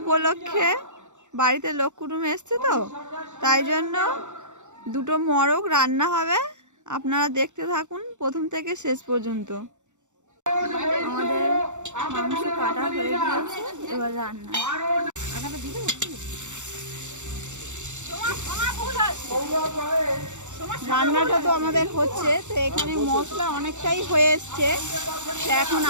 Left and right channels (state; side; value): late; left; 0.84 ms